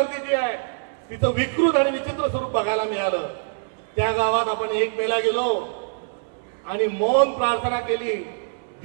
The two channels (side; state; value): left; silent; digital silence